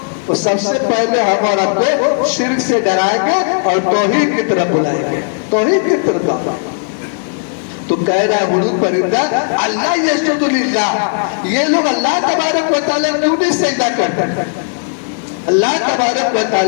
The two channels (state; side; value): silent; right; 67 dB below the other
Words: تو سب سے پہلے ہم اور آپ کو شرک سے ڈرائیں گے اور توحید کی طرف بلائیں گے. توحید کی طرف. تو کہہ رہا ہے حدود پرندہ اللہ یسجد للہ، یہ لوگ اللہ تبارک و تعالیٰ کیوں نہیں سجدہ کرتے؟ اللہ تبارک و